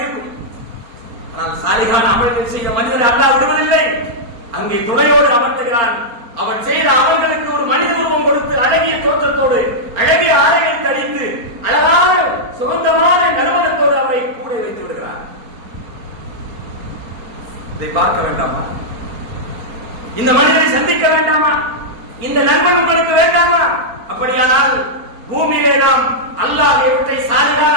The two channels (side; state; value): left; late; 4.3 ms